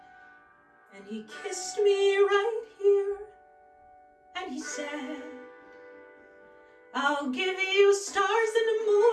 And he kissed me right here, and he said, I'll give you stars and a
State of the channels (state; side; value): identical; both; correlation 1.00